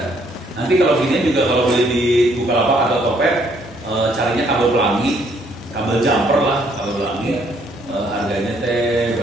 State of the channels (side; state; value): both; normal; correlation 0.67